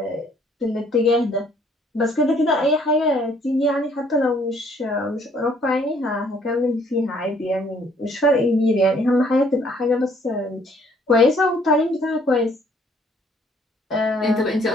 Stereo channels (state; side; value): normal; both; correlation 0.63